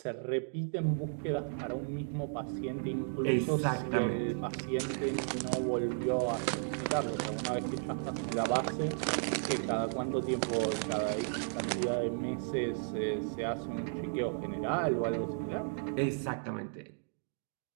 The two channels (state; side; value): silent; left; digital silence